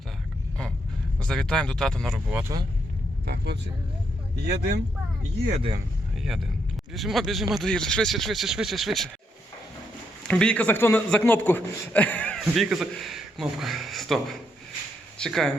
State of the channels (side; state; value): both; normal; correlation 0.77